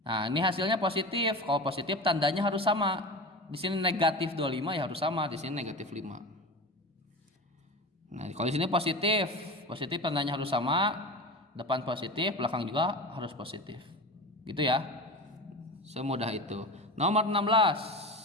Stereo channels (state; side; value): normal; both; correlation 0.29